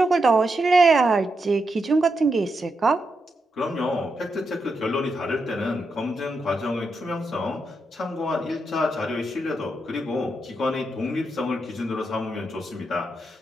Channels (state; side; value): normal; both; correlation 0.84